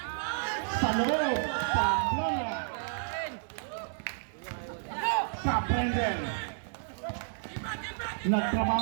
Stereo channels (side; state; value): left; silent; digital silence